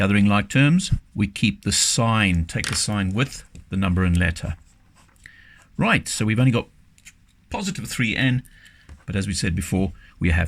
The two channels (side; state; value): both; identical; correlation 1.00